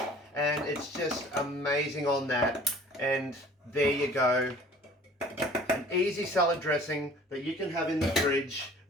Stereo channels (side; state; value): both; normal; correlation 0.49